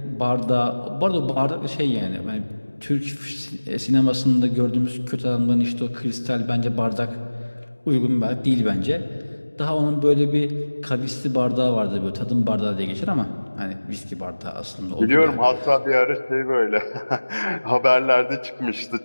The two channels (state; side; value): inverted; both; correlation -1.00